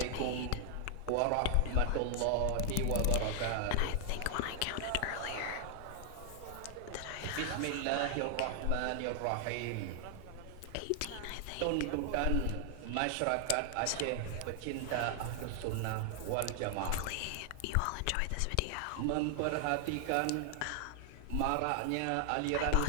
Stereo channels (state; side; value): different; both; correlation 0.00